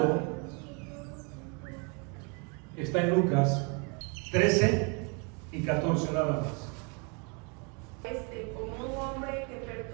está en Lucas 13 y 14 nada más. Como un hombre que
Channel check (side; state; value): left; quieter; 33.7 dB